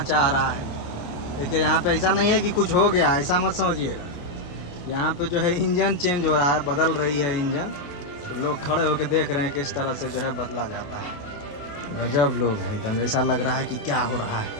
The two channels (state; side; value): late; right; 28 ms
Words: चाह रहा है। देखिए यहाँ पे ऐसा नहीं है कि कुछ हो गया, ऐसा मत समझिए। यहाँ पे जो है इंजन चेंज हो रहा है, बदल रही है इंजन, तो लोग खड़े होकर देख रहे हैं किस तरह से जो है बदला जाता है। गजब लोग हैं एकदम, ऐसा लग रहा है कि क्या हो रहा है।